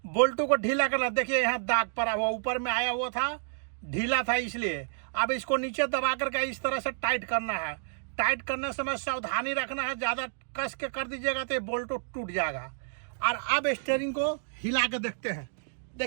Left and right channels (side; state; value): left; silent; digital silence